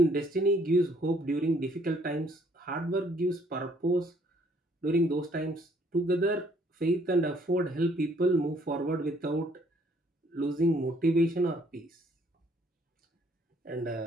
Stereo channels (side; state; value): both; normal; correlation 0.64